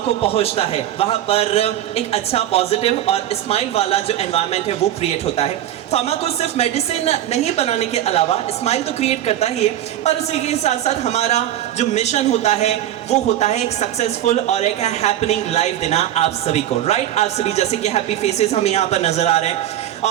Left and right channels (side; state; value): left; quieter; 12.1 dB